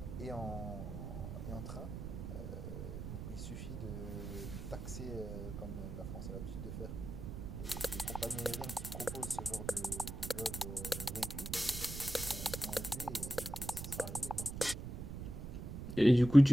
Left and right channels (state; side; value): noise; right; rumble, 7 dB below the sound